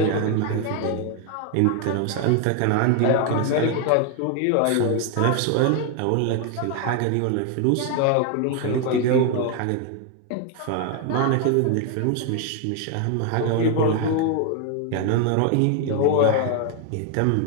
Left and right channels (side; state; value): both; different; correlation 0.01